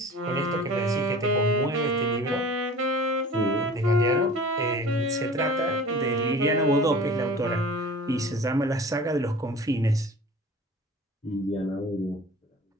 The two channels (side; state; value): both; normal; correlation 0.43